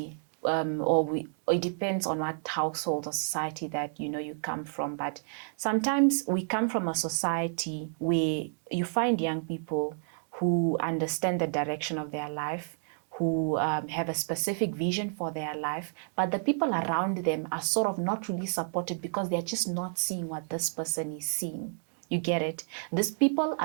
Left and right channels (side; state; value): left; silent; digital silence